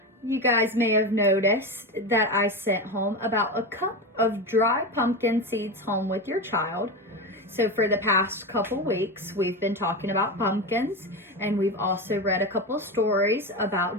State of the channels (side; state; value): both; normal; correlation 0.20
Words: You guys may have noticed that I sent home about a cup of dry pumpkin seeds home with your child. So for the past couple weeks, we've been talking about pumpkins, and we've also read a couple stories